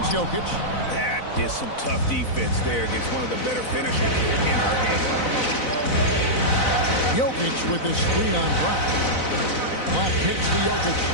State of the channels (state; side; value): late; right; 4.0 ms